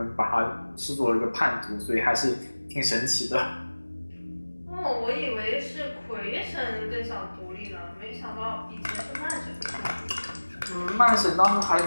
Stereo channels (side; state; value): both; inverted; correlation -1.00